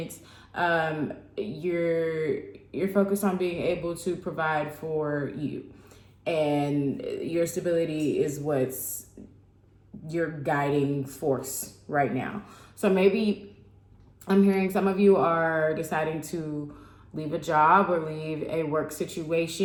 You're focused on being able to provide for you, and your stability is what's your guiding force right now. So maybe I'm hearing some of you are deciding to leave a job or leave a work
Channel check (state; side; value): identical; both; correlation 1.00